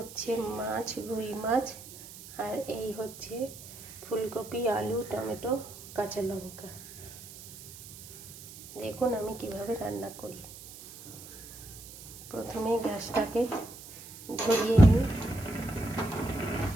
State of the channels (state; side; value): noise; right; hiss, 16 dB below the sound